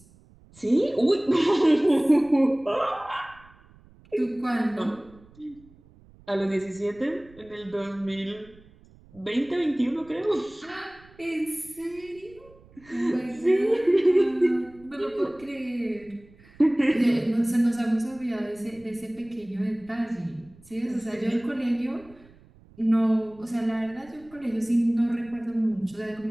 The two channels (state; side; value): noise; right; rumble, 26 dB below the sound